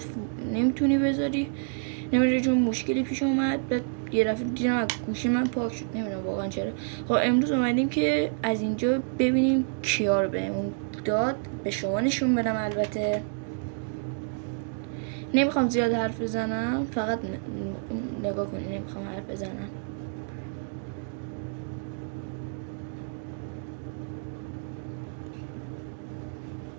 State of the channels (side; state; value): left; silent; digital silence